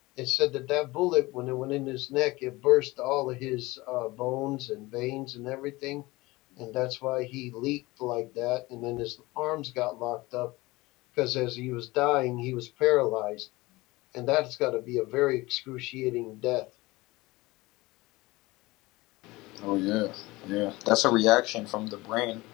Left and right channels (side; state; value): right; quieter; 21.1 dB